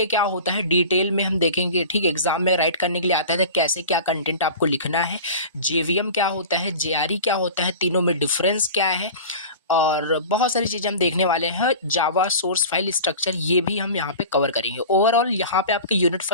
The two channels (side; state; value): both; inverted; correlation -0.36